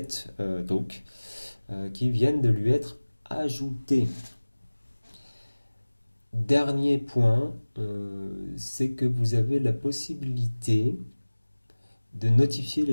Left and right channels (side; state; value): both; inverted; correlation -1.00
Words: talks qui viennent de lui être ajoutés. Dernier point, c'est que vous avez la possibilité de notifier